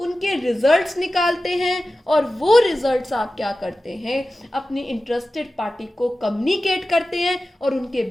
रिजल्ट्स निकालते हैं, और वो रिजल्ट्स आप क्या करते हैं, अपनी इंटरेस्टेड पार्टी को कम्युनिकेट करते हैं, और उनके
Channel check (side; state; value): both; normal; correlation 0.95